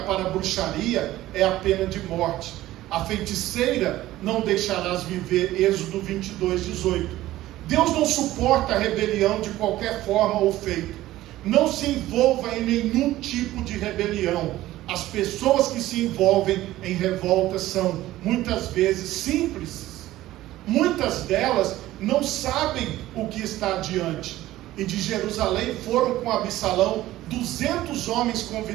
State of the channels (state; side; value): quieter; left; 15.5 dB